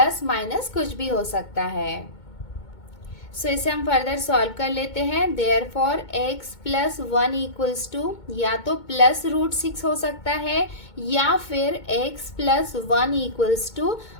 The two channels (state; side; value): late; right; 2.2 ms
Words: माइनस कुछ भी हो सकता है। सो इसे हम फर्दर सॉल्व कर लेते हैं। Therefore x plus 1 equals to, या तो प्लस √6 हो सकता है या फिर x plus 1 equals to